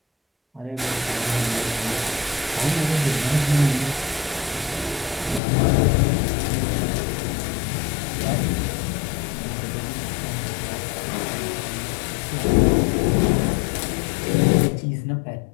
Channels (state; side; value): drops out; right; at 5.4 s